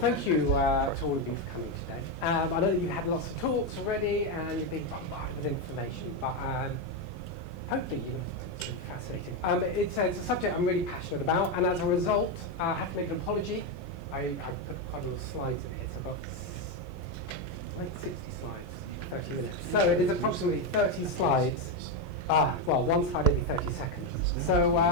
you to all of you for coming today. I know that you've had lots of talks already and you've been bombarded with information, but hopefully it's really fascinating. It's a subject I'm really passionate about, and as a result, I have to make an apology. I put quite a lot of slides in here, so I've got like 60 slides, 30 minutes. So it is approximately 30 slides. Well, one slide every 30 seconds. So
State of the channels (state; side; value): late; right; 1.1 ms